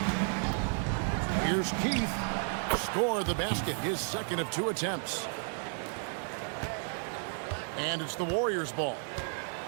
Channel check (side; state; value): left; silent; 56 dB below the other